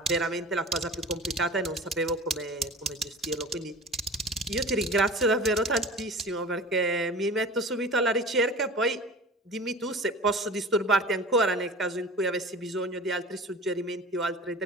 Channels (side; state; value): both; normal; correlation 0.38